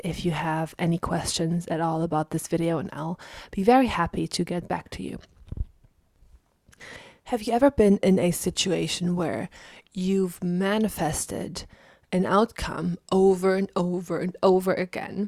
if you have any questions at all about this video, and I'll be very happy to get back to you. Have you ever been in a situation where you've manifested an outcome over and over and over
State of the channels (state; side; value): identical; both; correlation 1.00